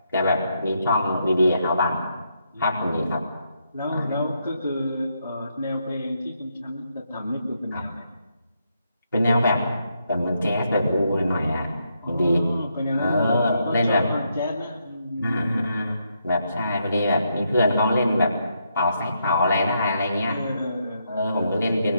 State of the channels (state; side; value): inverted; both; correlation -0.79